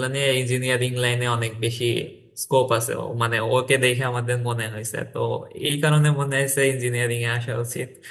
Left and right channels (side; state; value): both; identical; correlation 1.00